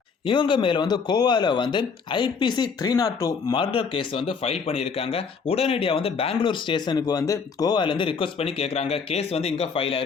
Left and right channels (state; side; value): quieter; right; 5.5 dB